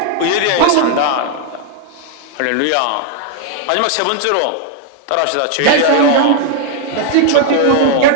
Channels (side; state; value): both; different; correlation 0.00